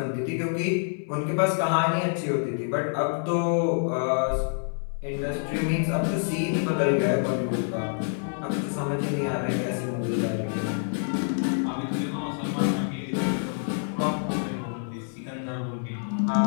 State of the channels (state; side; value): silent; right; 60 dB below the other